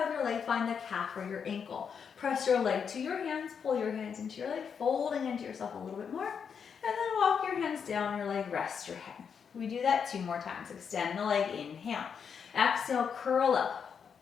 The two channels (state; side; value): quieter; right; 6.8 dB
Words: of your leg, find the calf or your ankle. Press your leg to your hands, pull your hands into your leg, folding into yourself a little bit more. And then walk your hands down your leg, rest your head. We do that 2 more times. Extend the leg, inhale. Exhale, curl up,